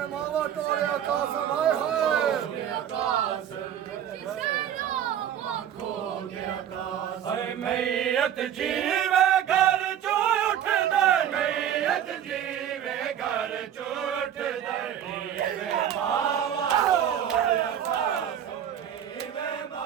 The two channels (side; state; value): left; quieter; 9.9 dB